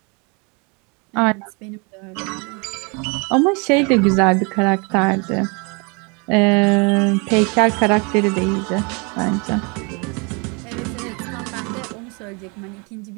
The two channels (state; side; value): quieter; left; 31.7 dB